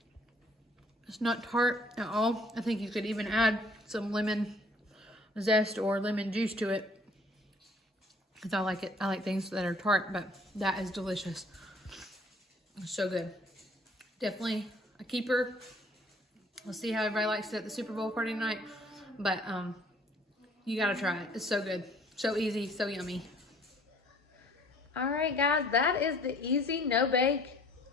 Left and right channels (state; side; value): normal; both; correlation 0.57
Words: It's not tart at all. I think you could even add some lemon zest or lemon juice to it. Because I like it. I like things that are tart, but that is delicious. It's so good. Definitely a keeper. We'll see how everybody likes it at the Super Bowl party tonight. But you gotta try it. It's so good. So easy, so yummy. All right, guys, that is the easy no-bake